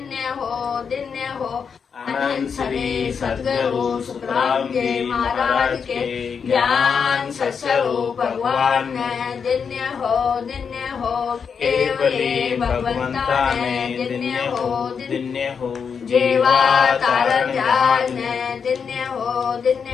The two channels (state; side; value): quieter; right; 6.3 dB